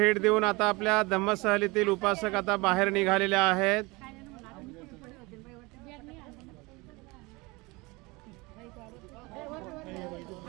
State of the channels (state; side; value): quieter; left; 24.5 dB